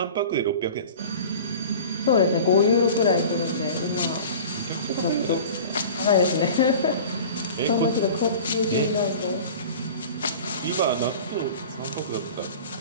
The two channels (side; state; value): both; inverted; correlation -0.39